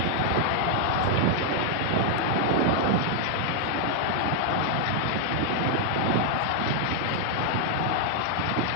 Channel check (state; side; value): different; both; correlation 0.00